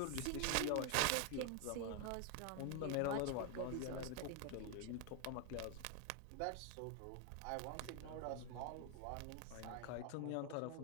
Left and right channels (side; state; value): both; different; correlation 0.01